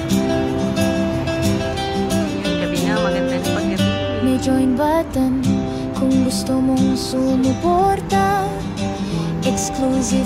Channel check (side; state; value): both; identical; correlation 1.00